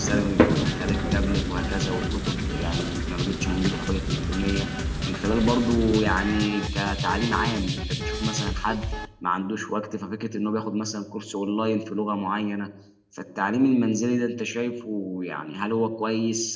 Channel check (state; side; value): identical; both; correlation 1.00